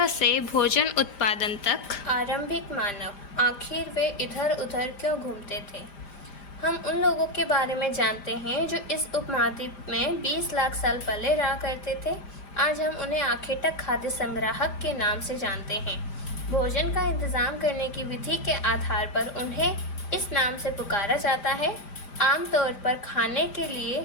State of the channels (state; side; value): late; right; 5.0 ms